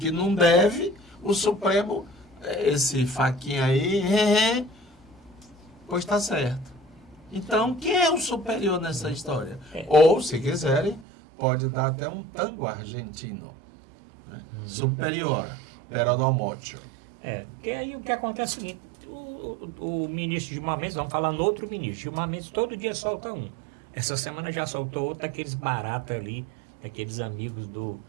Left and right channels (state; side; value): drops out; left; at 11.1 s